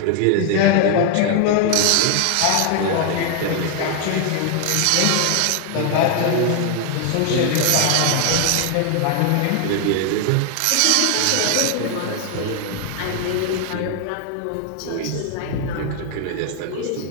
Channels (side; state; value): both; different; correlation 0.00